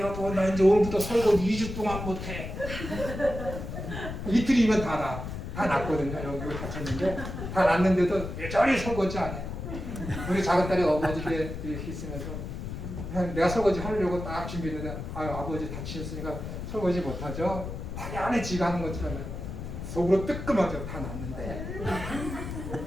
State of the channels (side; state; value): left; noise; rumble, 7 dB below the sound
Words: 나 이제 오늘부터 설거지 2주 동안 못해. 이틀이면 다 났거든요. 여기 다쳤는데 다 났는데도 여전히 설거지 안 해. 우리 작은 딸이 어머니께 이렇게 있으면서 내가 설거지 하려고 딱 준비했는데 아버지 다치셨으니까 설거지 못하죠. 당연히 지가 하는 것처럼 속으로 뜨끔하죠. 다 났는데.